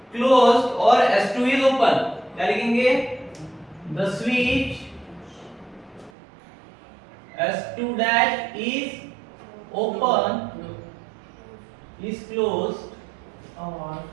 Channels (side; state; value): left; drops out; at 6.1 s